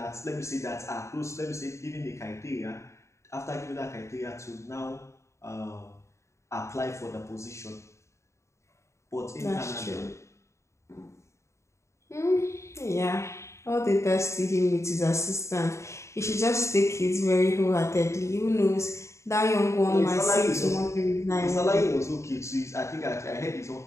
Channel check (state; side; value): late; right; 0.14 ms